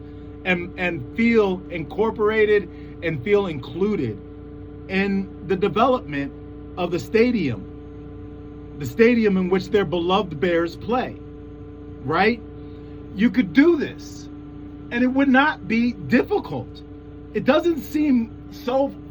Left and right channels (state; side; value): identical; both; correlation 1.00